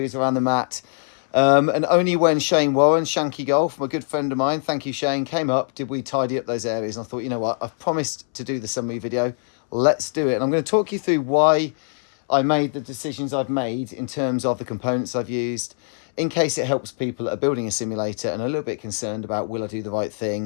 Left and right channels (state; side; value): silent; right; 64 dB below the other